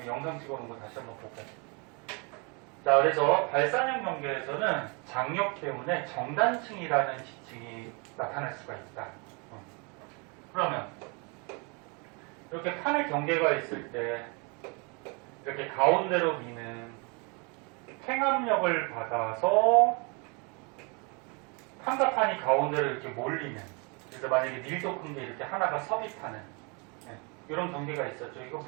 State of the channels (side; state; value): left; quieter; 32.3 dB